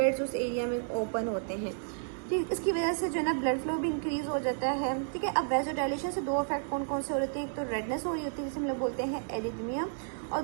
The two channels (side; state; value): left; silent; 56 dB below the other